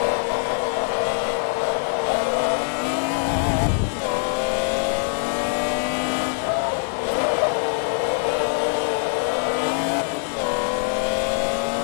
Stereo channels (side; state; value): right; silent; 63 dB below the other